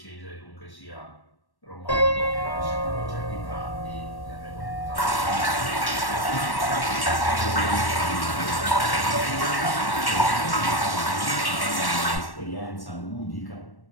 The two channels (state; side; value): late; right; 1.1 ms